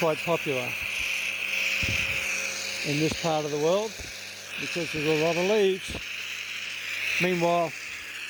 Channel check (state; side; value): identical; both; correlation 1.00